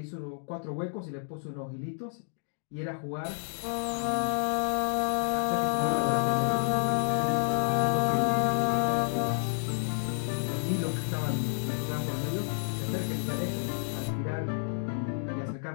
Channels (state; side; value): silent; right; digital silence